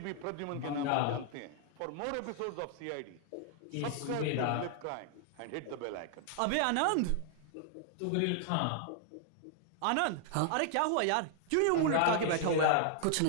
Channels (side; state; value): both; different; correlation 0.00